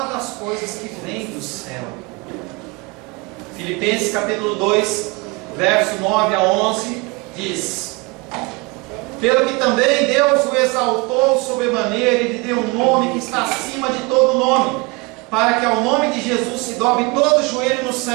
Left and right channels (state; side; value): quieter; left; 26.6 dB